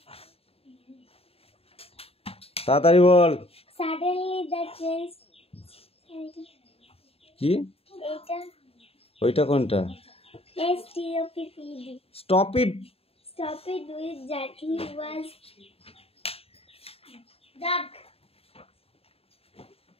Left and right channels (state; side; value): late; right; 0.28 ms